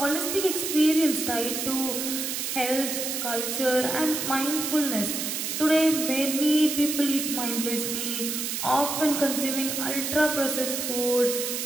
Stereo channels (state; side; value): noise; right; hiss, 2 dB below the sound